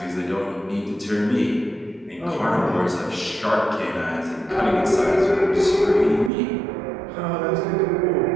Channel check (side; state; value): left; drops out; at 6.3 s